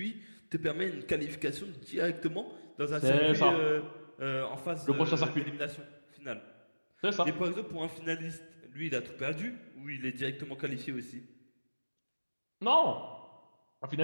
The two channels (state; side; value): inverted; both; correlation -1.00